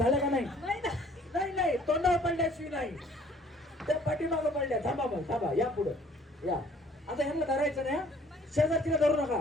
का? नाही नाही, तोंडावर पडल्याशिवाय नाही. त्या पाठीमागं पडल्या. थांबा मग, थांबा, या पुढं या. आता ह्यांना धरायचं नाही, शेजारतीला धरू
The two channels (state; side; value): normal; both; correlation 0.57